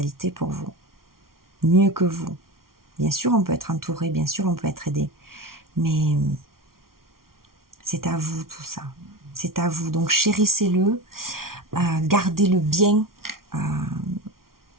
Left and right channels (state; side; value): late; left; 0.93 ms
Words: pour vous. Mieux que vous. Bien sûr, on peut être entouré, bien sûr, on peut être aidé. Mais c'est à vous tout ça. C'est à vous. Donc chérissez-le, gardez-le bien,